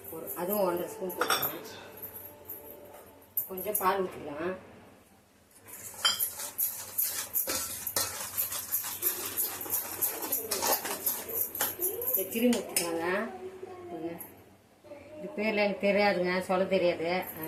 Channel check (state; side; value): identical; both; correlation 1.00